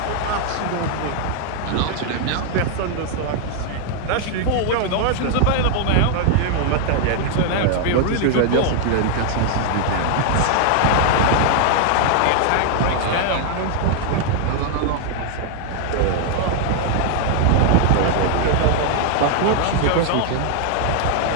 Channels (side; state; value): both; different; correlation 0.00